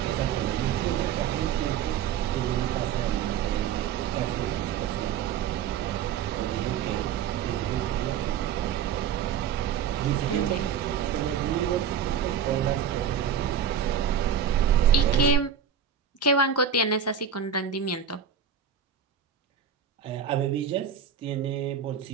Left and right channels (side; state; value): left; quieter; 7.6 dB